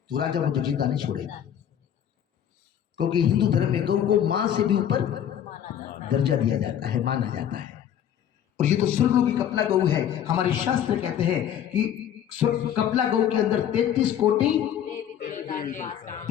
तो राजा मुझे जिंदा नहीं छोड़ेगा, क्योंकि हिंदू धर्म में गौ को मां से भी ऊपर दर्जा दिया जाता है, माना जाता है। और ये तो स्वर्गलोकी कपला गौ है। हमारे शास्त्र कहते हैं कि कपला गौ के अंदर 33 कोटि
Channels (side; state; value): right; quieter; 9.8 dB